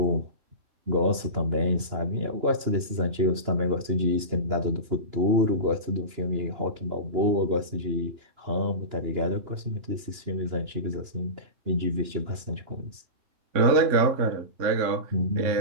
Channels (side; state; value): left; late; 2.9 ms